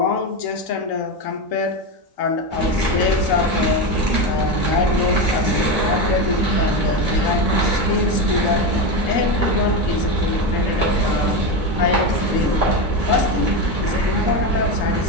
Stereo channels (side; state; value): both; normal; correlation 0.15